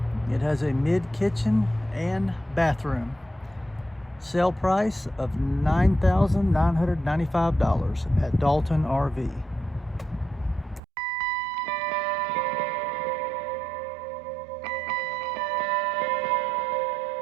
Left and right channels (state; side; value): drops out; left; at 10.8 s